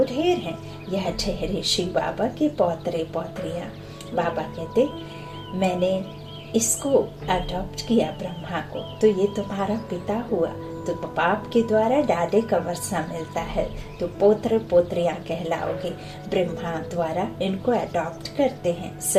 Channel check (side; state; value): both; identical; correlation 1.00